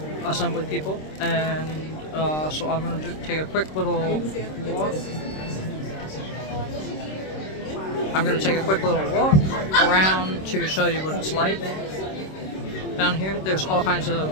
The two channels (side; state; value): right; late; 26 ms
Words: assembly people, and so I'm going to take a quick little walk. I'm going to take a quick little walk around to show you what it's like. Down here, there's all kinds